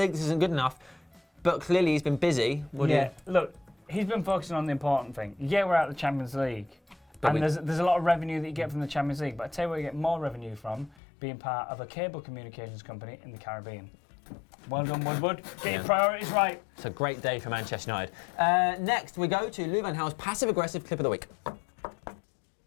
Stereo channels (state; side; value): drops out; right; at 11.0 s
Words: this isn't good enough. But clearly he's been busy. Look, he's been focusing on the important thing. Yeah, we're out of the Champions League. But And there's a lot of revenue that you get from the Champions League, but I tell you where you get more revenue from, being part of a cable communications company in the Caribbean. Well done, Woodward. Get your priorities right. It's a great day for Manchester United. Next, we go to Louis van Gaal's passive-aggressive clip of the week. How